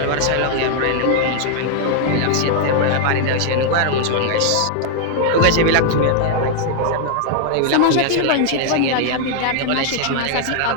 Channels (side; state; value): both; different; correlation 0.00